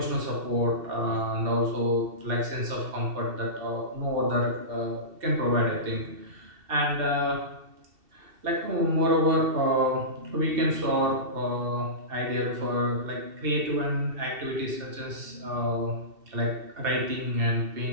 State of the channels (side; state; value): left; late; 2.7 ms